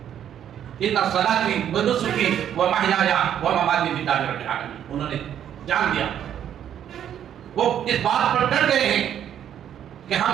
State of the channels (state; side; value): quieter; left; 9.9 dB